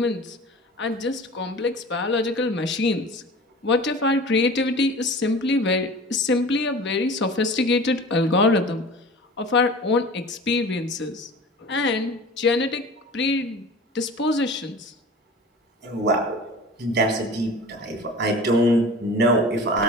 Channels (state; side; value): normal; both; correlation 0.39